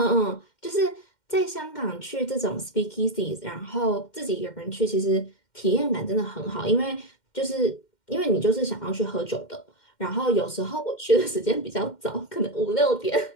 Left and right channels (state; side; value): late; right; 2.1 ms